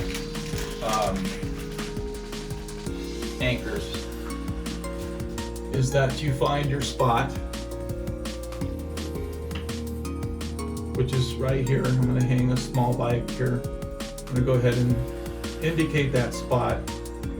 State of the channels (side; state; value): both; identical; correlation 1.00